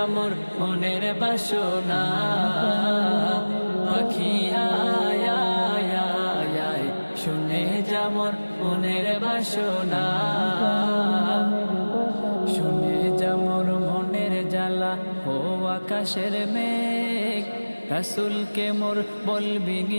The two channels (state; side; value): inverted; both; correlation -1.00